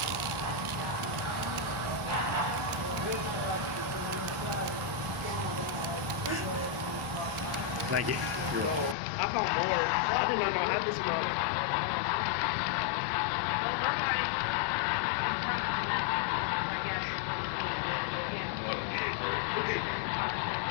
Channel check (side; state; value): right; drops out; at 9.0 s